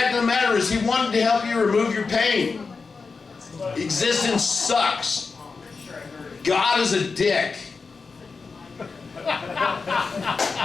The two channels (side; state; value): right; quieter; 4.6 dB